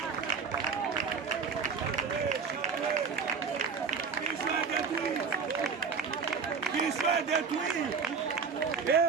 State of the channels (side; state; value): left; quieter; 5.5 dB